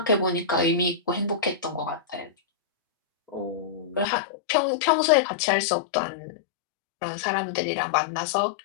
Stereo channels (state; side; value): drops out; right; at 4.0 s